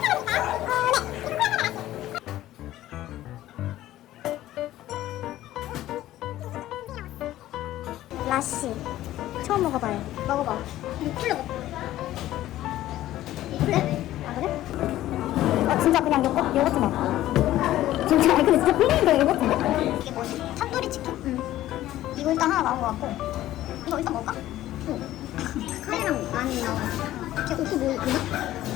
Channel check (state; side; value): quieter; right; 14.4 dB